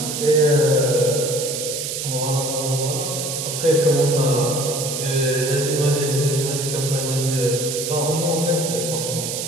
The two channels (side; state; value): right; noise; hiss, 4 dB below the sound